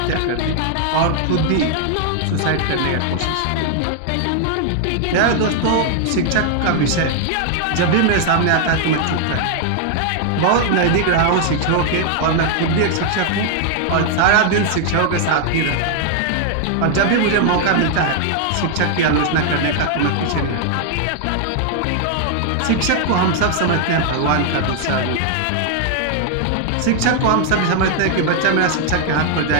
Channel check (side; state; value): both; different; correlation 0.00